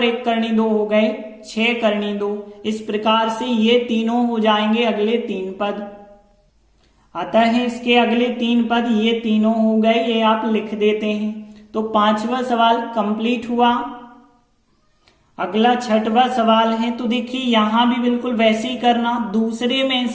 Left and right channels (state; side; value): identical; both; correlation 1.00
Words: 1 करनी 2 हो गए 6 करनी 2। इस प्रकार से ये तीनों हो जाएंगे अगले 3 पद। अतः इसके अगले 3 पद ये तीनों हो गए, ये आप लिख देते हैं। तो 5वां सवाल कंप्लीट हुआ। अगला 6वां सवाल है, तो देखिए यहां भी बिल्कुल वैसे ही करना, दूसरे में